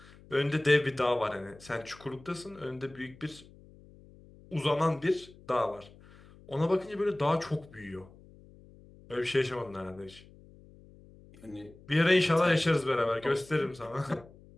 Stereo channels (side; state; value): left; noise; hum, 23 dB below the sound